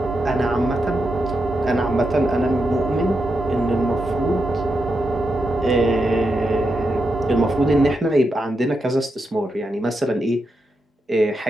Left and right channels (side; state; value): both; normal; correlation 0.85